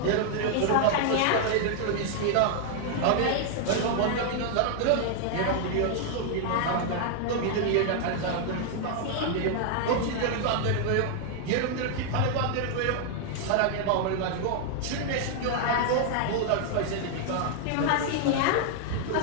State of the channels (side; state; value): both; different; correlation 0.00